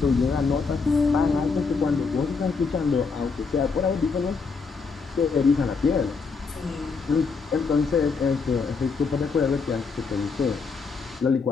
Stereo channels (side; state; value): right; quieter; 4.9 dB